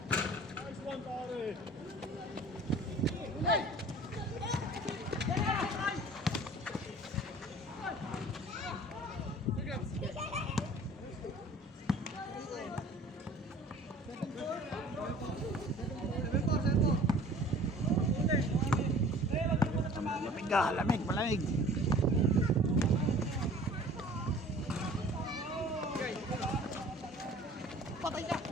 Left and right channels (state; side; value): normal; both; correlation 0.47